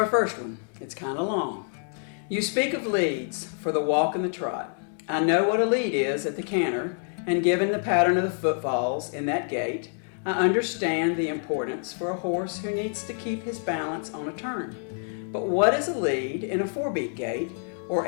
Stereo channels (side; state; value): right; silent; 59 dB below the other